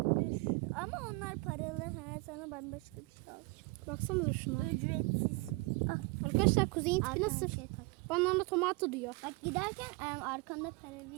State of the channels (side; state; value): left; quieter; 25.7 dB